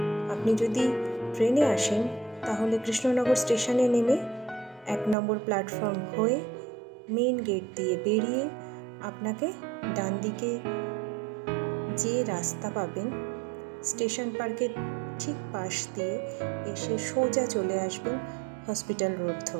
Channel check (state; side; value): drops out; left; at 5.2 s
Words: আপনি যদি ট্রেনে আসেন তাহলে কৃষ্ণনগর স্টেশনে নেমে 1 নম্বর প্ল্যাটফর্ম হয়ে মেইন গেট দিয়ে বেরিয়ে আপনাকে ডান দিকে যে রাস্তা পাবেন স্টেশন পার্কের ঠিক পাশ দিয়ে এসে সোজা চলে আসবেন হসপিটাল রোড